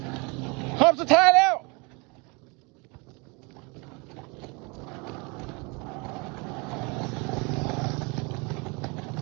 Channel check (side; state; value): left; quieter; 29.3 dB